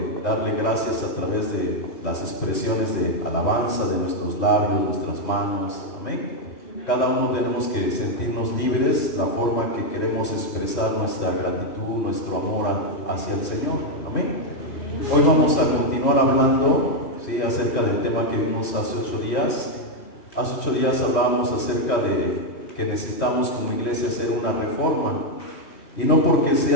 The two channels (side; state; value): right; late; 3.1 ms